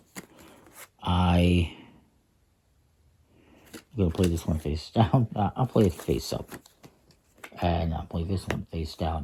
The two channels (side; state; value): both; identical; correlation 1.00